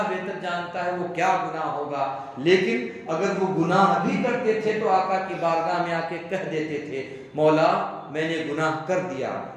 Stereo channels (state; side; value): identical; both; correlation 1.00